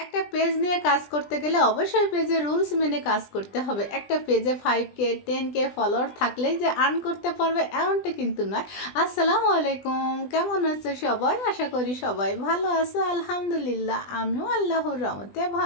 একটা পেজ নিয়ে কাজ করতে গেলে অবশ্যই পেজের রুলস মেনে কাজ করতে হবে। একটা পেজে 5K 10K ফলোয়ার থাকলেই যে আর্ন করতে পারবে এমনটা কিন্তু নয়। আসসালামু আলাইকুম, কেমন আছো সবাই? আশা করি সবাই ভালো আছো। আলহামদুলিল্লাহ আমিও আল্লাহর রহমতে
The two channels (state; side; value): late; right; 20 ms